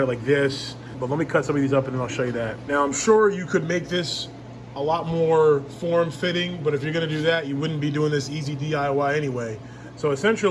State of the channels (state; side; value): identical; both; correlation 1.00